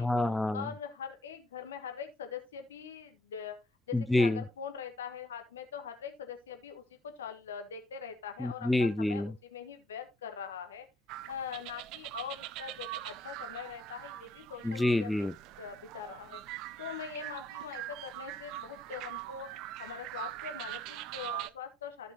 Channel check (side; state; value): both; normal; correlation 0.67